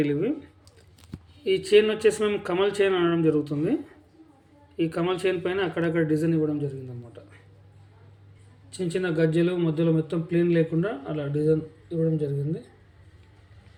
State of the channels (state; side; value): identical; both; correlation 1.00